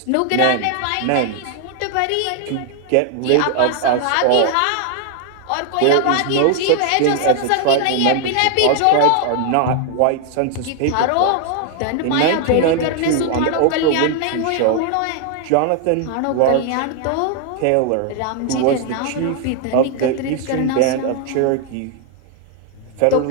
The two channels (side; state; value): both; different; correlation 0.00